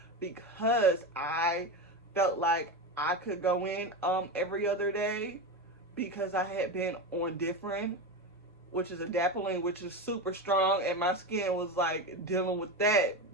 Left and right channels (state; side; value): normal; both; correlation 0.19